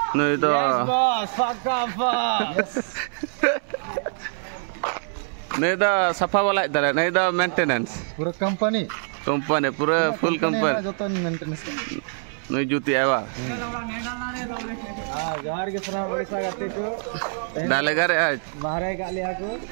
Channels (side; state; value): left; silent; 60 dB below the other